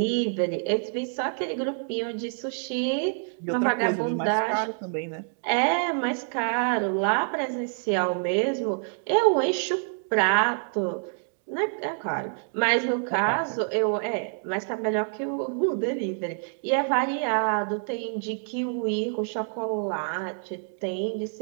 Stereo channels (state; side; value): silent; left; 60 dB below the other